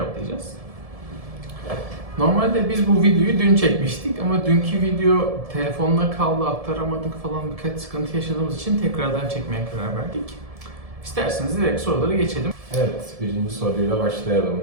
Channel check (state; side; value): late; left; 1.7 ms